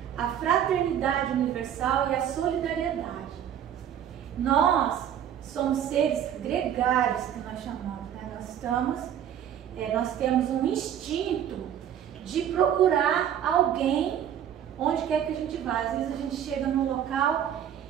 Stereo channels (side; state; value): left; quieter; 9.7 dB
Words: à fraternidade universal e à solidariedade. Nós somos seres gregários, que nós chamamos, né? Nós temos um instinto de procurar alguém onde quer que a gente vá. Às vezes a gente chega num local